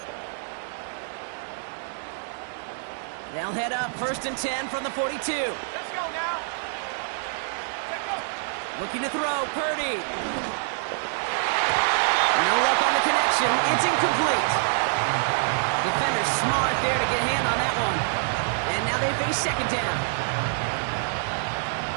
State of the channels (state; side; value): silent; left; digital silence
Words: They'll head up 1st and 10 from the 42. Let's go now. Let's go. Looking to throw, Purdy. No luck on the connection. It's incomplete. Defender's smart there to get a hand on that one. And now they face 2nd down.